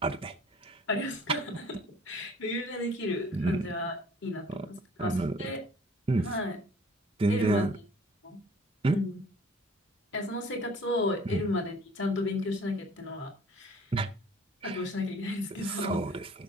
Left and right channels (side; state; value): both; normal; correlation 0.53